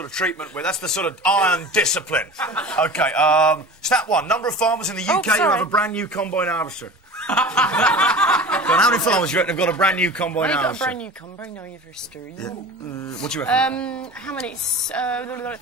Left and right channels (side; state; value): both; normal; correlation 0.36